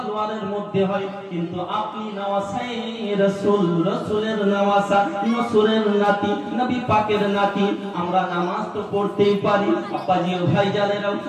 মধ্যে হয়, কিন্তু আপনি নওয়াসায়ে রাসূল, রাসূলের নওয়াসা, নসুরের নাতি, নবী পাকের নাতি, আমরা নামাজ তো পড়তেই পারি। আব্বাজি ও ভাইজানেরাও,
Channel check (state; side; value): identical; both; correlation 1.00